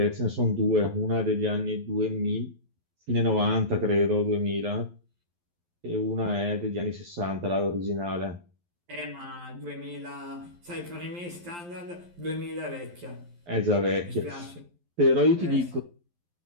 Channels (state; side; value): late; left; 11 ms